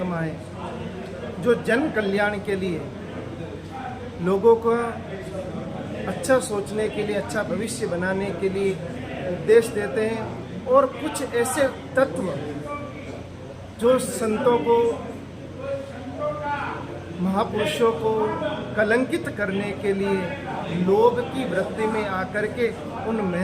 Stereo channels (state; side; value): identical; both; correlation 1.00